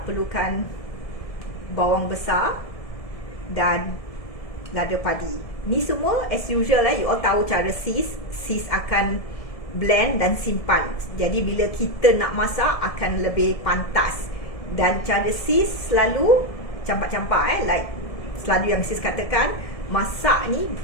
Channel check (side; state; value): right; late; 1.7 ms